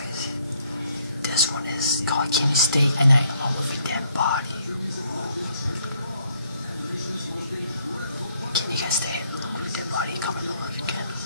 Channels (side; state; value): both; inverted; correlation -0.68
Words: This one is called Can You Stay at Night Alone with a Dead Body? Can you guys stay alone with a dead body? Comment below if you can.